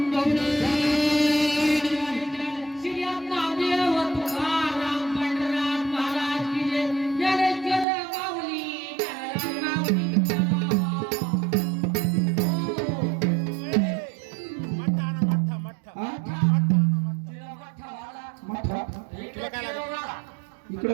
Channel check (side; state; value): left; drops out; at 7.9 s